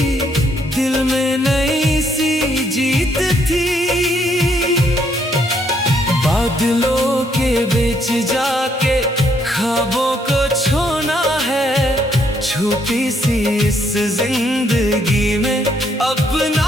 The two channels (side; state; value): both; normal; correlation 0.71